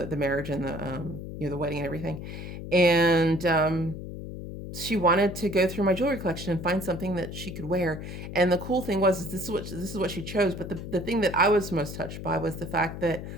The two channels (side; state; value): left; noise; hum, 9 dB below the sound